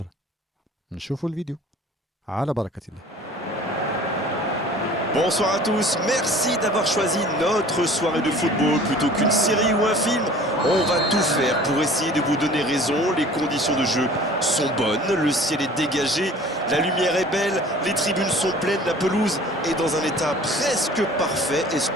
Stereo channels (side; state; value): both; normal; correlation 0.47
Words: نشوفوا الفيديو على بركه الله. Bonsoir à tous, merci d'avoir choisi notre soirée de football plutôt qu'une série ou un film. On va tout faire pour essayer de vous donner raison. Les conditions de jeu sont bonnes, le ciel est dégagé, la lumière est belle, les tribunes sont pleines, la pelouse est dans un état presque parfait.